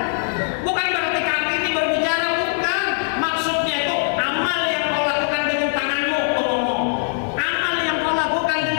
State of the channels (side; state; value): right; silent; digital silence